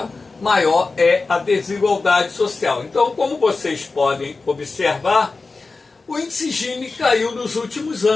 maior é a desigualdade social. Então, como vocês podem observar, o índice Gini caiu nos últimos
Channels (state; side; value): quieter; right; 3.9 dB